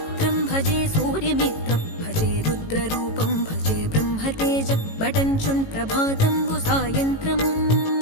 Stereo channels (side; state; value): right; late; 18 ms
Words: భజే సూర్యమిత్రం భజే రుద్రరూపం భజే బ్రహ్మతేజం బటంచున్ ప్రభాతంబు సాయంత్రం